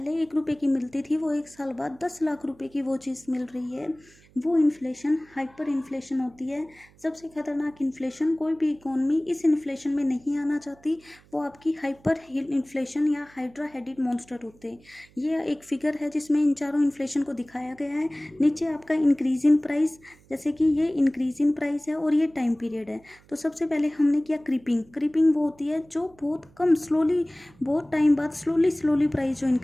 1 रुपये की मिलती थी वो 1 साल बाद 10 लाख रुपए की वो चीज़ मिल रही है। वो इन्फ्लेशन हाइपर इन्फ्लेशन होती है। सबसे खतरनाक इन्फ्लेशन, कोई भी इकोनॉमी इस इन्फ्लेशन में नहीं आना चाहती, वो आपकी हाइपर इन्फ्लेशन या हाइड्रा हेडेड मॉन्स्टर होते हैं। ये एक फिगर है जिसमें इन चारों इन्फ्लेशन को दिखाया गया है। नीचे आपका इंक्रीज इन प्राइस, जैसे कि ये इंक्रीज इन प्राइस है और ये टाइम पीरियड है। तो सबसे पहले हमने किया क्रीपिंग। क्रीपिंग वो होती है जो बहुत कम, स्लोली, बहुत टाइम बाद स्लोली प्राइस जो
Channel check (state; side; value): noise; right; hum, 28 dB below the sound